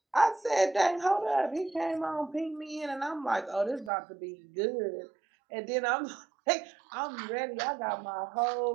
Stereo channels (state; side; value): drops out; left; at 3.9 s